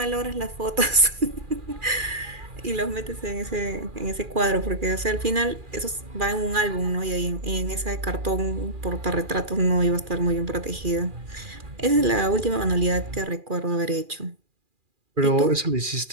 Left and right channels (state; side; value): late; left; 2.4 ms